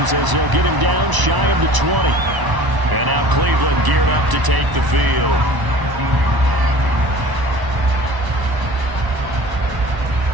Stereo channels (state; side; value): late; left; 1.0 ms